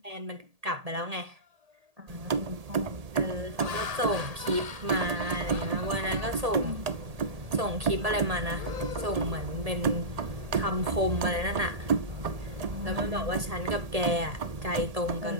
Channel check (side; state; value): left; late; 1.8 ms